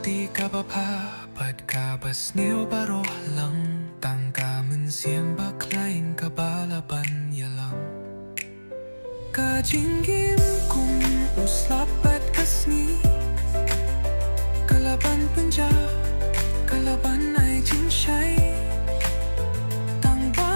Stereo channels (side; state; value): both; inverted; correlation -1.00